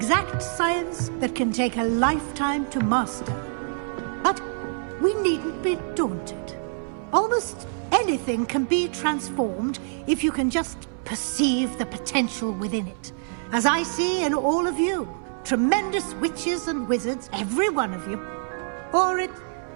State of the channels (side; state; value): left; silent; 58 dB below the other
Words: science that can take a lifetime to master. But we needn't be daunted. Almost anything can be transformed if you can just perceive the potential within it. As I see in all of you, tremendous witches and wizards, every one of you. Or it